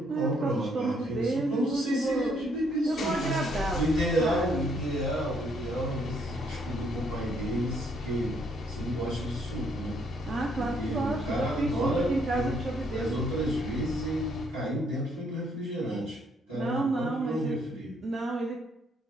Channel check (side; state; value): both; normal; correlation 0.69